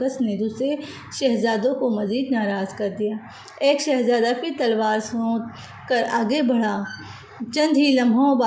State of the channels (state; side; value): identical; both; correlation 1.00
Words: نے دوسرے شہزادوں کو مزید ناراض کر دیا۔ ایک شہزادہ پھر تلوار سونت کر آگے بڑھا، چند ہی لمحوں